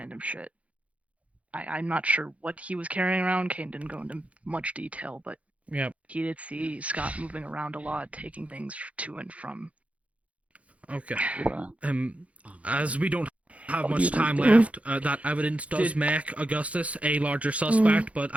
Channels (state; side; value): late; left; 0.065 ms